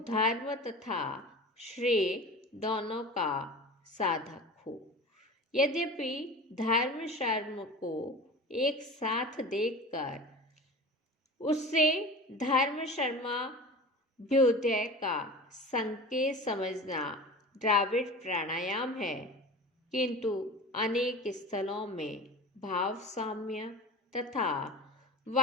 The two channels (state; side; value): normal; both; correlation 0.35